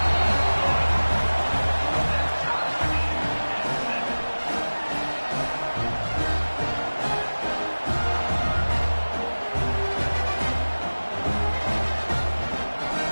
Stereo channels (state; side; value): inverted; both; correlation -1.00